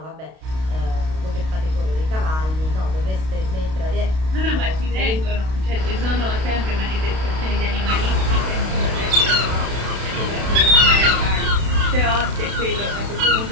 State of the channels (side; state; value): left; late; 32 ms